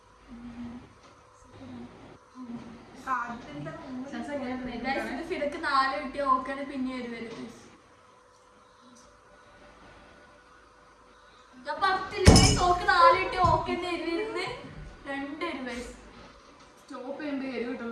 ഫിടക്ക് 4 കിട്ടിയ ഓക്കാണ് പിന്നെ വരും. ഞാൻ 10 ഓക്ക് 4 കിട്ടിയ ഓക്കന്റെ എരിവിരുന്ന് 2 എരിവ്. സ്റ്റോപ്പ് ചെയ്യുമ്പോൾ എരിവ്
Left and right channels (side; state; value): both; identical; correlation 1.00